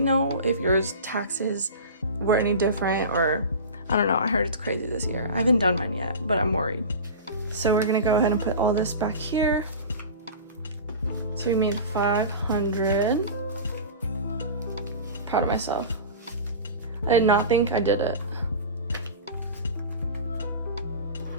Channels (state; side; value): inverted; both; correlation -0.32